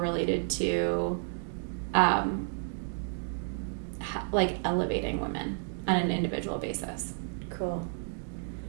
to, like, elevating women on an individual basis. Cool.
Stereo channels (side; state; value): left; silent; digital silence